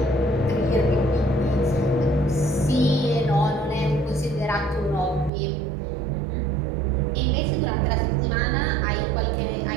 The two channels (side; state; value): left; drops out; at 5.3 s